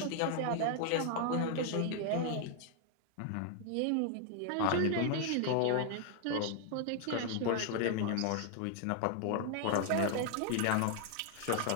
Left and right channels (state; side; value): different; both; correlation 0.00